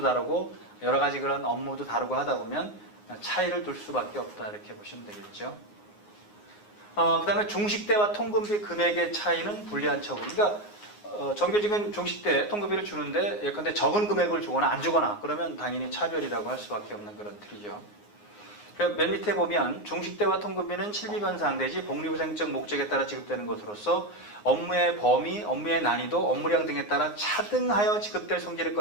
다르고 여러 가지 그런 업무도 다르고 하다 보면 차이를 둘 수밖에 없다 이렇게 보시면 되겠죠. 그 다음에 중식대와 통근비 금액의 차이는 불리한 처우. 그러니까 정규직은 중식대 통근비를 주는데 예컨대 적은 금액을 주거나 안 주거나 그러면 당연히 차별이라고 할 수밖에 없는 그런 틀이죠. 맨 밑에 보면 중식대와 통근비는 실비변상 내지 복리후생적 목적에 따라 지급되는 것으로서 업무의 범위, 업무의 난이도, 업무량 등에 따라 차등하여 지급될 성질의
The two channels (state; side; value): late; right; 9.6 ms